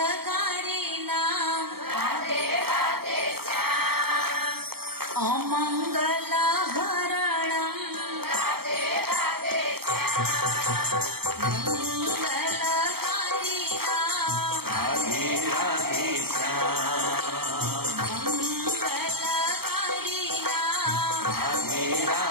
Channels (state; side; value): late; left; 0.95 ms